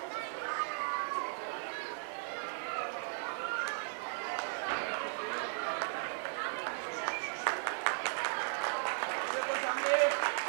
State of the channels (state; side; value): silent; left; 53 dB below the other